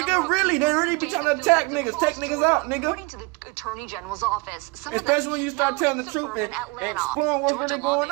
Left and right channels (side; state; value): left; quieter; 27.8 dB